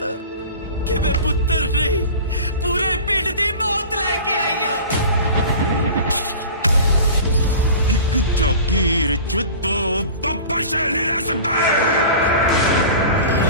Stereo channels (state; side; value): inverted; both; correlation -0.38